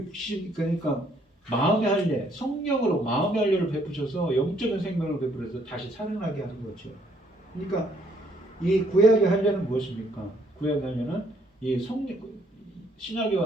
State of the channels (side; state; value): both; normal; correlation 0.67